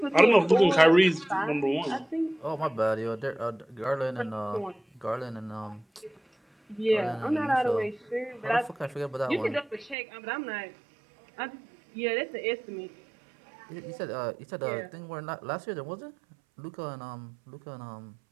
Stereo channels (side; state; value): left; drops out; at 10.0 s